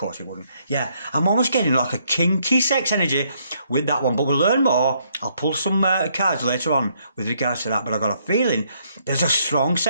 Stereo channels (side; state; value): both; inverted; correlation -0.71